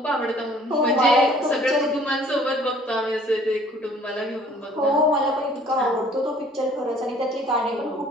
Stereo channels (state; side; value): normal; both; correlation 0.55